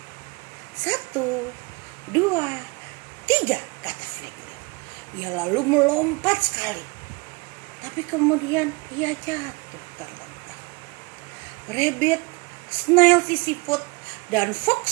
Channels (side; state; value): left; quieter; 27.6 dB